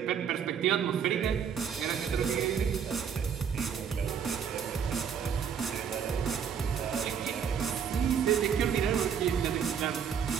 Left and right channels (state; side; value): quieter; left; 7.4 dB